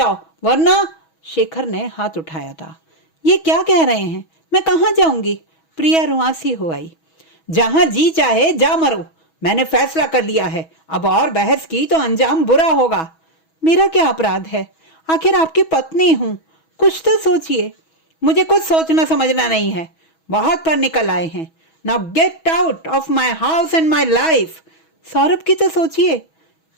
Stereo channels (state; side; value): late; right; 6.2 ms